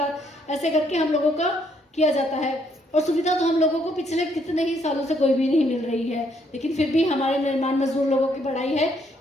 ऐसे करके हम लोगों का किया जाता है। और सुविधा तो हम लोगों को पिछले कितने ही सालों से कोई भी नहीं मिल रही है, लेकिन फिर भी हमारे निर्माण मजदूर लोगों की बड़ाई है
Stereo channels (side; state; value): both; normal; correlation 0.70